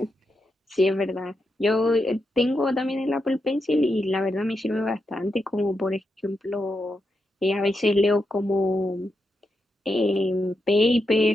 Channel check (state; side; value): normal; both; correlation 0.85